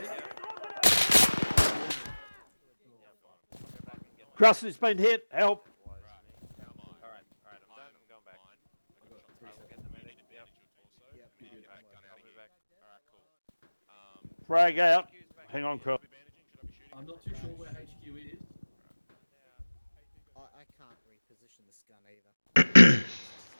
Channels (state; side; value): inverted; both; correlation -1.00